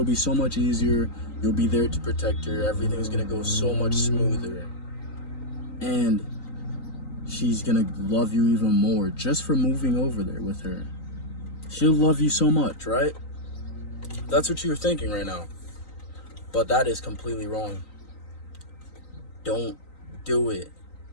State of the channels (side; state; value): right; late; 3.9 ms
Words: be so much easier, you'll be there to protect her, everything's gonna go so much smoother. And she's gonna love you even more just for moving over there with her. She'll love you so much, right? That's what you're thinking right now. But that is completely wrong. Don't do it.